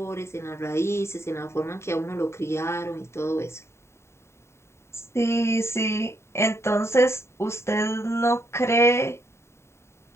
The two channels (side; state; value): right; late; 0.13 ms